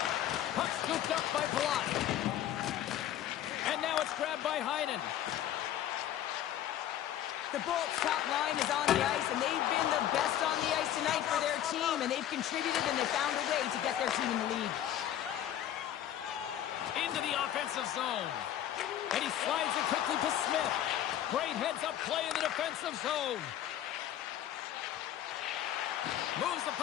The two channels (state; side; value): quieter; right; 11.5 dB